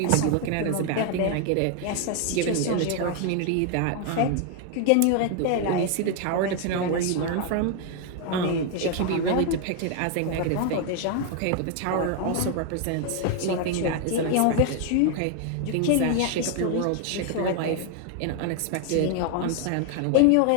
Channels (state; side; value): different; both; correlation 0.01